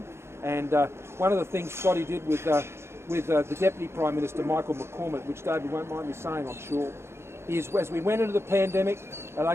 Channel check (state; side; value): late; left; 0.12 ms